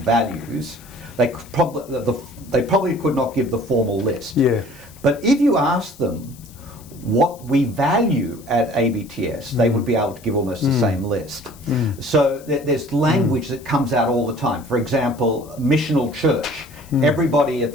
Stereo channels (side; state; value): left; noise; hiss, 23 dB below the sound